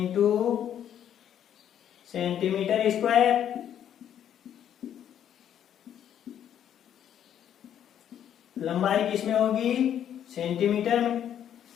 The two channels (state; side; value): quieter; right; 9.9 dB